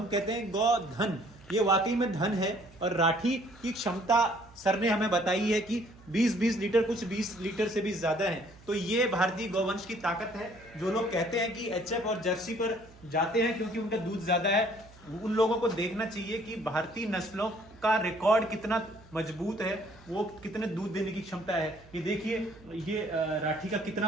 कहते हैं गौधन, ये वाकई में धन है। और राठी की क्षमता सर ने हमें बताई है कि 20 लीटर, कुछ 20 लीटर से भी ज्यादा है। तो ये भारतीय गौवंश की ताकत है। जो लोग कहते हैं कि एचएफ और जर्सी पर जाते हैं क्योंकि उनका दूध ज्यादा है, उन लोगों को देखना चाहिए कि भारतीय नस्लों का रिकॉर्ड कितना मजबूत है, वो कितने दूध देने की क्षमता है। ये देखिए, ये राठी का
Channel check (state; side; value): noise; right; hum, 24 dB below the sound